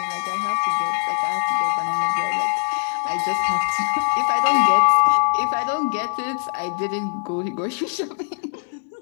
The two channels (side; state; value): right; silent; digital silence